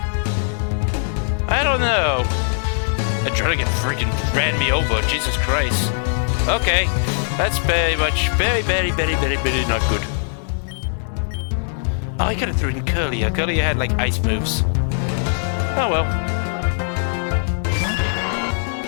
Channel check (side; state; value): right; silent; digital silence